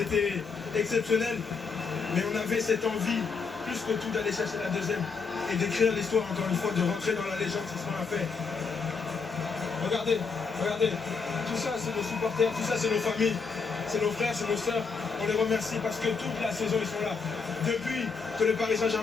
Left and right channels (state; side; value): quieter; right; 5.1 dB